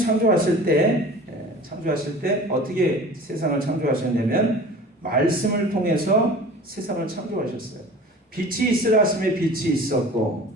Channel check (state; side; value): normal; both; correlation 0.41